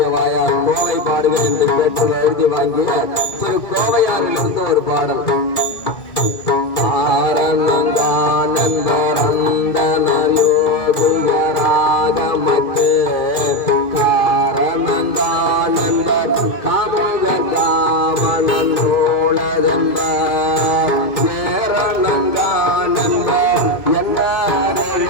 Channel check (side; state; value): right; late; 2.3 ms